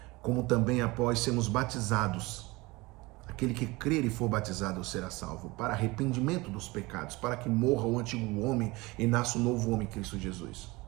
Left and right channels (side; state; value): left; quieter; 22.7 dB